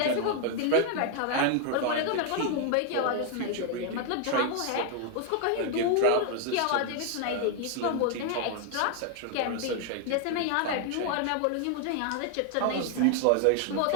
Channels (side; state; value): both; different; correlation 0.00